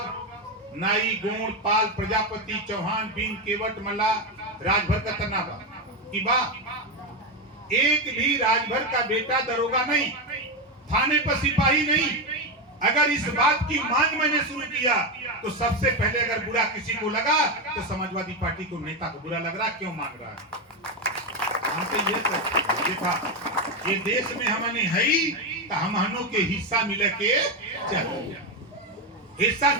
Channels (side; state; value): both; normal; correlation 0.10